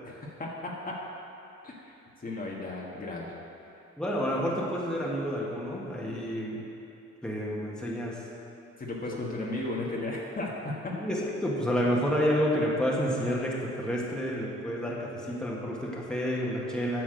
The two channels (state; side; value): normal; both; correlation 0.62